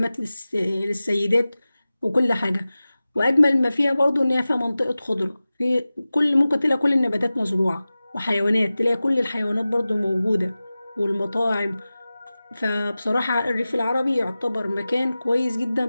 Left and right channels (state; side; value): inverted; both; correlation -0.96